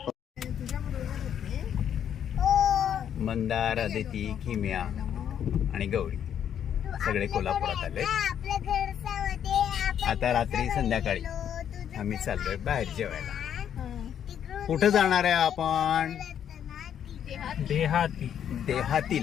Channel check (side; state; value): right; quieter; 9.2 dB